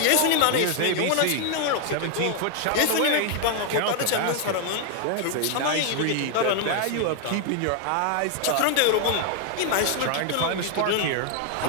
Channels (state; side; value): different; both; correlation 0.00